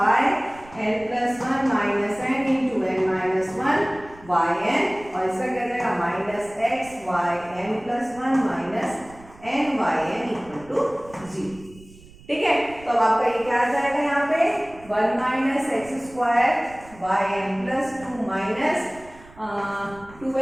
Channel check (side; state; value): right; noise; rumble, 22 dB below the sound